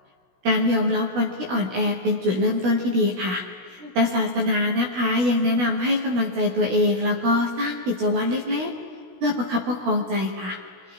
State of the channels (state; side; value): late; left; 16 ms